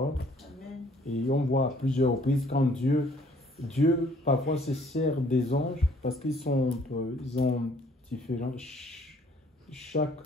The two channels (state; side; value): normal; both; correlation 0.60